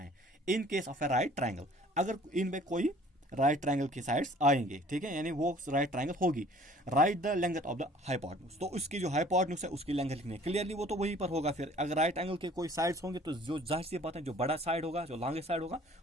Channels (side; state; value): both; normal; correlation 0.52